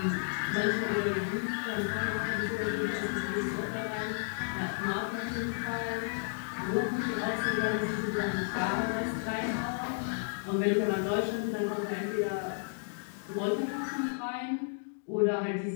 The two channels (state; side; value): silent; right; digital silence